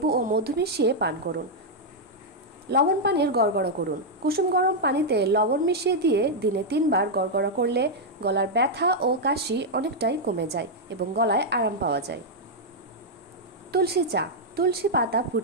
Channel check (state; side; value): normal; both; correlation -0.03